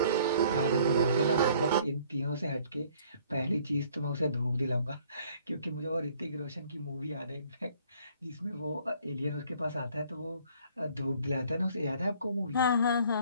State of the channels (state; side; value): inverted; both; correlation -0.58